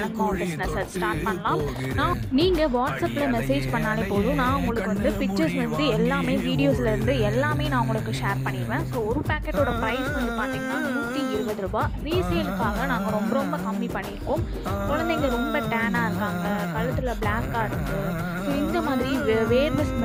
மாவு பிஸ்னஸை ஸ்டார்ட் பண்ணலாம். நீங்கள் வாட்ஸ்அப்பில் மெசேஜ் பண்ணாலே போதும். நான் உங்களுக்கு பிக்சர்ஸ் எல்லாமே வீடியோஸ்லேருந்து எல்லாமே நான் உங்களுக்கு ஷேர் பண்ணிடுவேன். ஸோ ஒரு பேக்கெட்டோட ப்ரைஸ் பார்த்தீங்கன்னா 120 ரூபா. ரீசேலுக்காக நாங்கள் ரொம்ப ரொம்ப கம்மி பண்ணியிருக்கோம். குழந்தைங்க ரொம்ப டேனாக இருக்காங்க, கழுத்தில் பிளாக்காக இருக்குது, ஸோ இந்த மாதிரி வேர்வை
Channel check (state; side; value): identical; both; correlation 1.00